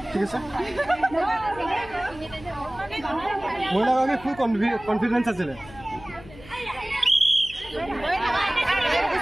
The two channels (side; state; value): left; noise; hum, 19 dB below the sound